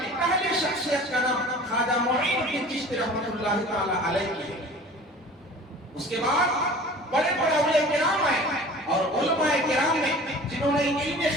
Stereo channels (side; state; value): both; normal; correlation 0.43